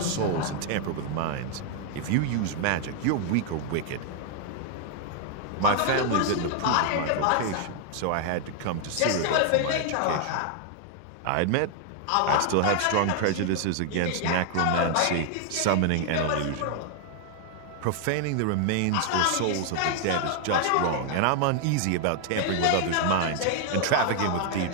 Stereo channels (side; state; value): both; different; correlation 0.00